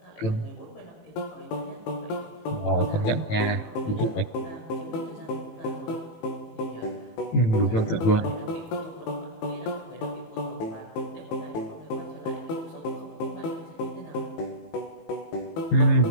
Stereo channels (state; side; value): late; right; 19 ms